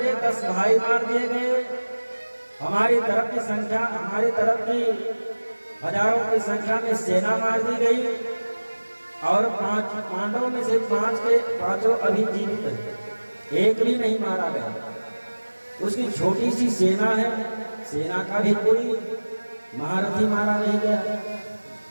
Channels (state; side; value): inverted; both; correlation -1.00